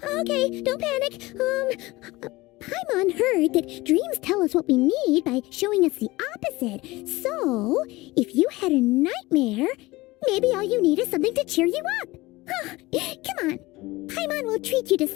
Okay, don't panic. Paimon heard that dreams tell us what we need by showing us the opposite. So, if you had a nightmare, maybe all you need is something to cheer you up. Come on, Paimon will treat you to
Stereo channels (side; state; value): right; quieter; 20.4 dB